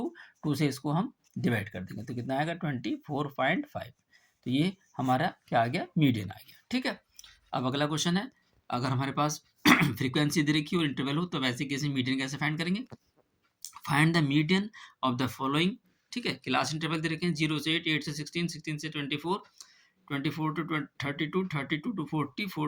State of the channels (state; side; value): identical; both; correlation 1.00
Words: से इसको हम डिवाइड कर देंगे, तो कितना आएगा 24.5, तो ये हमारा क्या आ गया मीडियन आ गया, ठीक है। अब अगला क्वेश्चन है, अगर हमारे पास फ्रीक्वेंसी दे रखी हो और इंटरवल हो तो वैसे कैसे मीडियन कैसे फाइंड करेंगे, find the median of the following, ठीक है। क्लास इंटरवल दे रखे हैं 0 से 8, 8 से 16, 16 से 24, 24 टू 32, 32 टू 40,